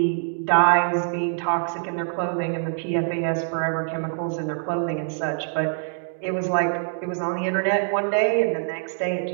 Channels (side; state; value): left; silent; digital silence